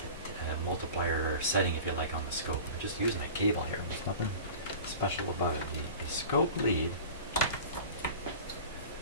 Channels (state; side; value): inverted; both; correlation -0.37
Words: multiplier setting, if you like, on the scope. I'm just using a cable here. There's nothing special about it. The scope lead,